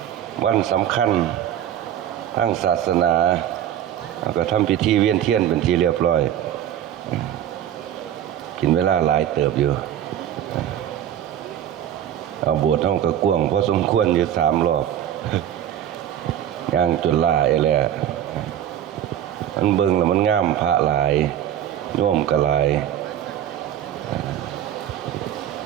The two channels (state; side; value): quieter; left; 10.8 dB